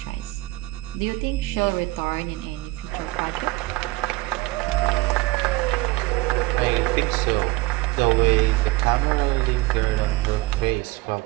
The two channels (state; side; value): quieter; left; 20.5 dB